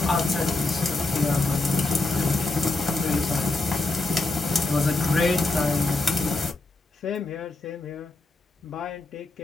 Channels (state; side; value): quieter; right; 3.1 dB